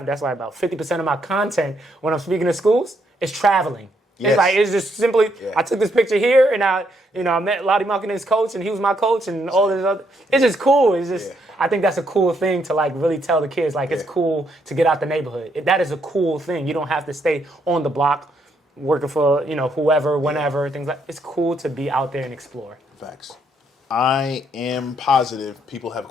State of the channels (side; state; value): both; normal; correlation 0.74